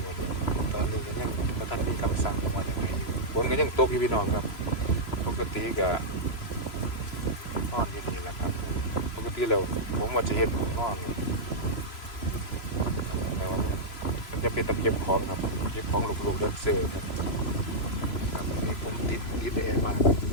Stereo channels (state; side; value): late; right; 3.0 ms